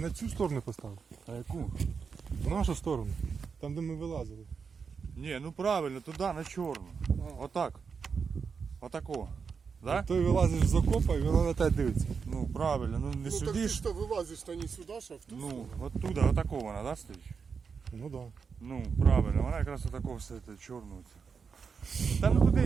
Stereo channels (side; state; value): left; quieter; 5.7 dB